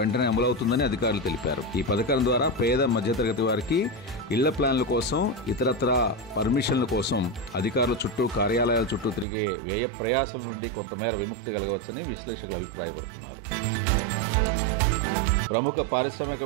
అమలవుతుందని అధికారులు తెలిపారు. ఈ పథకం ద్వారా పేద మధ్యతరగతి వారికి ఇళ్ల ప్లాన్ల కోసం, ఇతరత్ర పర్మిషన్ల కోసం అధికారుల చుట్టూ, కార్యాలయాల చుట్టూ తిరిగే వ్యయ ప్రయాసాల నుండి కొంతమేర విముక్తి కలగవచ్చని విశ్లేషకులు అభిప్రాయపడుతున్నారు. ప్రముఖ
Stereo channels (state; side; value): drops out; left; at 9.2 s